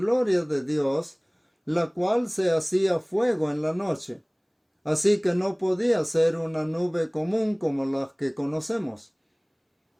de Dios, la cual se hacía fuego en la noche. Así que no podía ser una nube común como las que conocemos.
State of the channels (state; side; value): identical; both; correlation 1.00